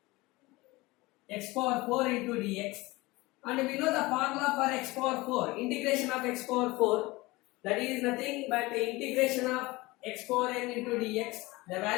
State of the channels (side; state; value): right; quieter; 21.6 dB